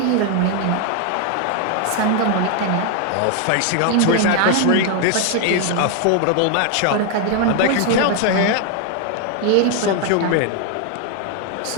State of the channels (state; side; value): different; both; correlation 0.01